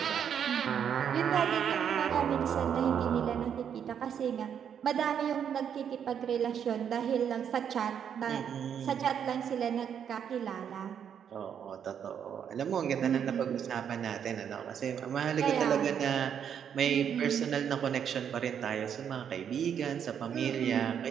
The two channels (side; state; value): left; quieter; 8.3 dB